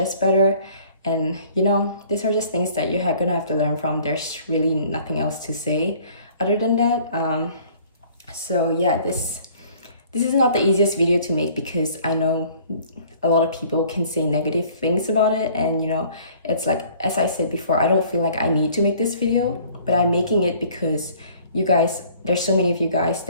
better. And, you know, these are just things that you're gonna have to learn from. There's really nothing else to say other than that. So yeah, this is not the easiest video to make, because I know a lot of people can say negative things about it. And, you know, it's like, as I said before, I don't feel like I need to make this video, but I'm making it because you guys, there's so many of you guys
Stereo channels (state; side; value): inverted; both; correlation -0.55